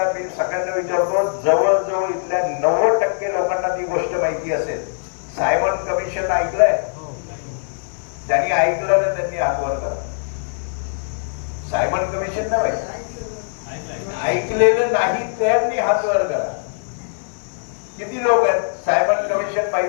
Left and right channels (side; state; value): right; silent; 60 dB below the other